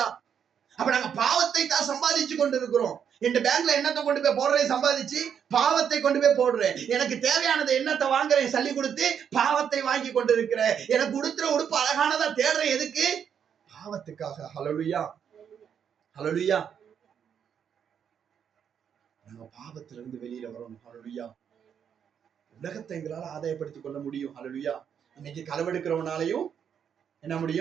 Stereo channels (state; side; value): quieter; left; 8.0 dB